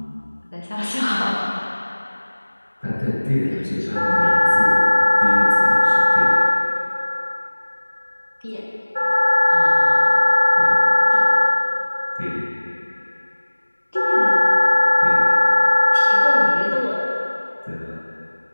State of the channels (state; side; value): inverted; both; correlation -1.00